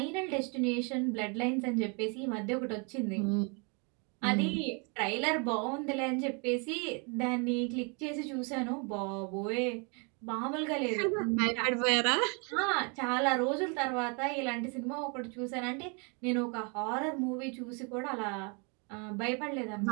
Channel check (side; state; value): left; quieter; 34.5 dB